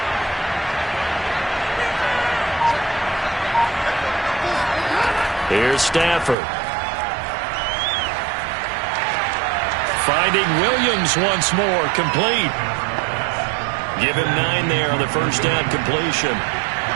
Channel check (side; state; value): left; drops out; at 6.4 s